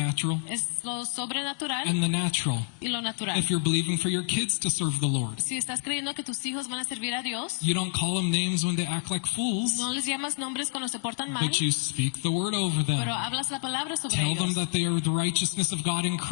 Es lo sobrenatural and the natural. y lo natural. If you're believing for your kids to serve the Lord, Si estás creyendo que tus hijos van a servir a Dios, you don't call them names when they act like fools, no les llamas nombres cuando se portan mal, but you speak the word over them. pero hablas la palabra sobre Tell them ellos. that they are the righteousness of God in Les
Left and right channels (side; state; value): right; silent; 59 dB below the other